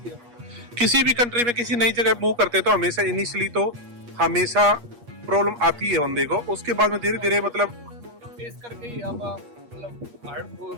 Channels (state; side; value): late; left; 8.4 ms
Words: है। किसी भी कंट्री में किसी नई जगह मूव करते हैं तो हमेशा इनिशियली तो हमेशा प्रॉब्लम आती है बंदे को, उसके बाद में धीरे धीरे मतलब फेस करके ही आप मतलब आगे